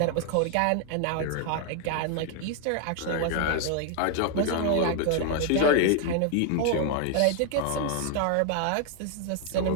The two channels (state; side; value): different; both; correlation 0.00